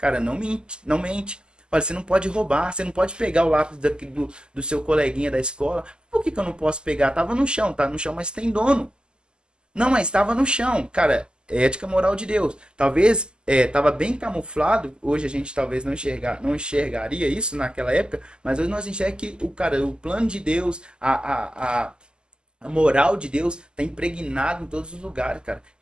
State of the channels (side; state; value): left; late; 0.047 ms